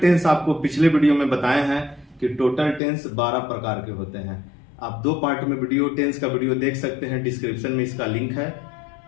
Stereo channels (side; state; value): right; drops out; at 2.8 s